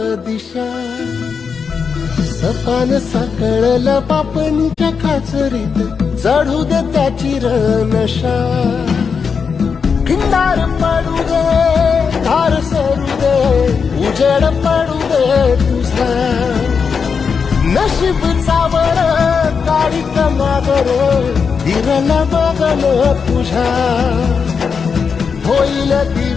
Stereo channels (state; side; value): quieter; right; 5.9 dB